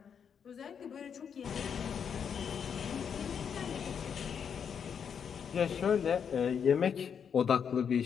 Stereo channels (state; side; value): quieter; right; 7.3 dB